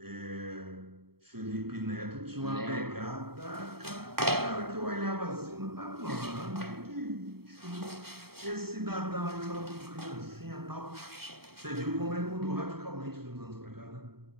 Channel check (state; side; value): late; left; 0.95 ms